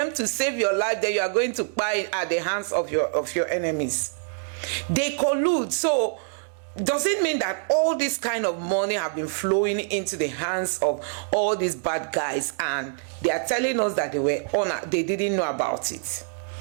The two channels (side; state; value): left; silent; digital silence